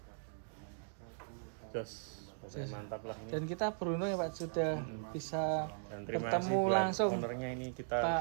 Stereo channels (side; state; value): left; silent; digital silence